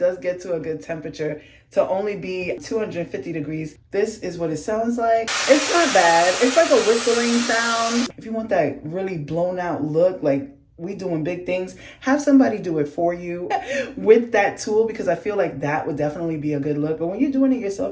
get to a good temperature to only be 250 degrees. This is what it sounds like. It's not bad. It's like a whistling sound. If you want that really blown out look, like we doing big things, have somebody do it for you with that tool, because I feel like that would definitely be a good look. But when you're doing it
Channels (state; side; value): identical; both; correlation 1.00